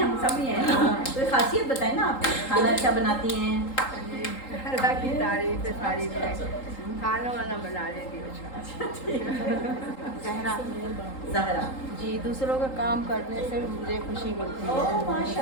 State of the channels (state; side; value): late; right; 3.8 ms